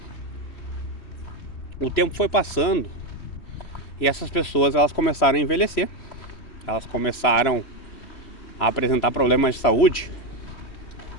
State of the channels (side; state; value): right; late; 3.2 ms